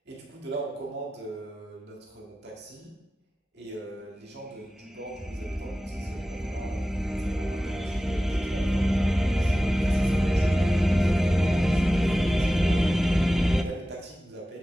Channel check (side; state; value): both; normal; correlation 0.96